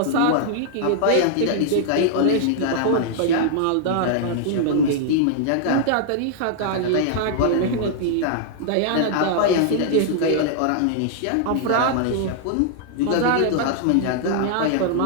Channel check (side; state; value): both; different; correlation -0.01